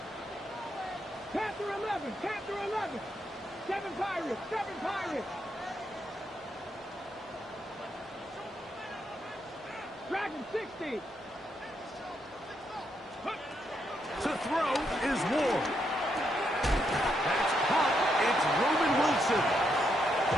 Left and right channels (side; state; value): both; normal; correlation 0.79